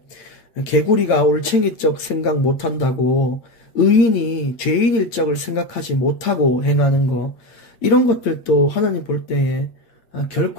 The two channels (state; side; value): late; right; 8.7 ms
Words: 개구리가 올챙이적 생각 못한다고 의인이 죄인일 적을 생각하지 못하고 행하는 거, 이런 것들도 하나님 볼 때에